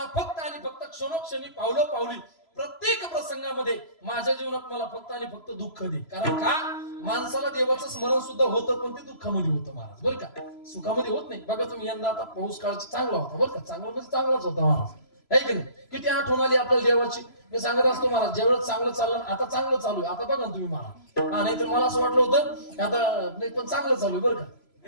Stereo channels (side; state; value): right; late; 3.0 ms